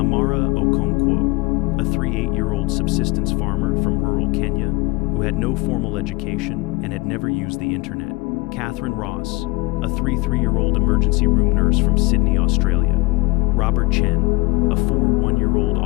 Okonkwo, a 8-year-old subsistence farmer from rural Kenya, who had no formal education and had never used the internet. Catherine Ross, a 3-year-old emergency room nurse from Sydney, Australia. Robert Chen, a 1-year-old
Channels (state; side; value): quieter; right; 23.7 dB